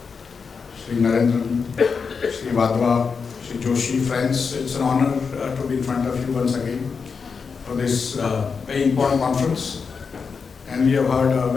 Shri Narendran, Shri Vadva, Shri Joshi, friends, it's an honor to be in front of you once again for this very important conference. And we have heard a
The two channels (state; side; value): quieter; right; 5.5 dB